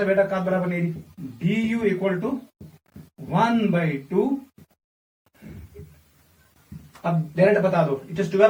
बेटा का बराबर नहीं, du इक्वल टू 1/2, अब डायरेक्ट बता दो, इट इज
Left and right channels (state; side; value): identical; both; correlation 1.00